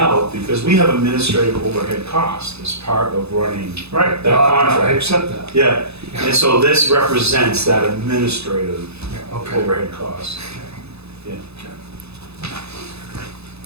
because we have administrative overhead costs as part of running Right, that contract. I accept that. Yeah, and so this represents that administrative Yeah, okay. overhead cost. Yeah.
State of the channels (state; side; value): late; left; 0.79 ms